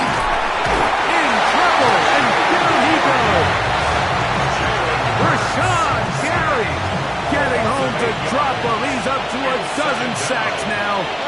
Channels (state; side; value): identical; both; correlation 1.00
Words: In trouble, and down he goes. Rashawn Gary getting home to drop him. He's up to a dozen sacks now